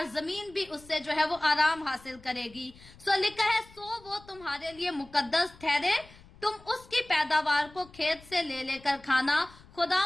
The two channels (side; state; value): left; noise; rumble, 23 dB below the sound